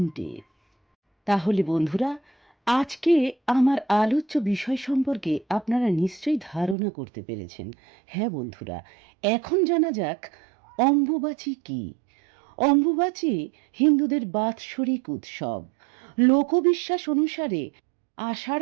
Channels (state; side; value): drops out; left; at 6.8 s